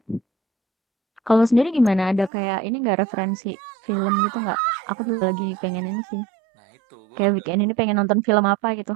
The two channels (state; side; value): drops out; left; at 2.3 s